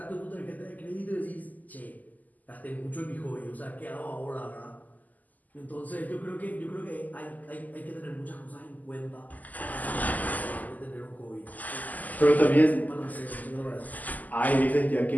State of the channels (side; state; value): right; late; 0.080 ms